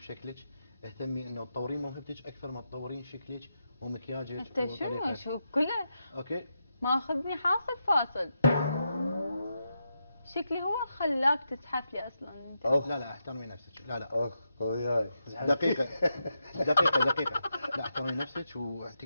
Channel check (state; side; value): inverted; both; correlation -0.85